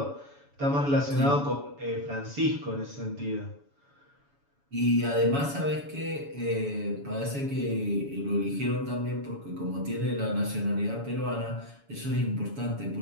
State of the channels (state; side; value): late; left; 7.1 ms